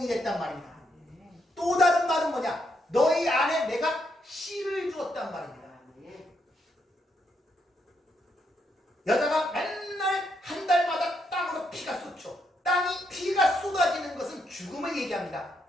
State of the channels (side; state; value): both; normal; correlation 0.78